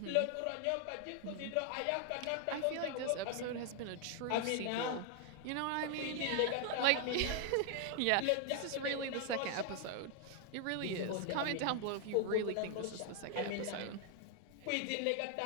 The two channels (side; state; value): both; different; correlation 0.00